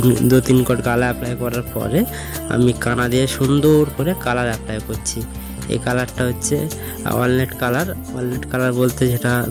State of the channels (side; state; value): both; identical; correlation 1.00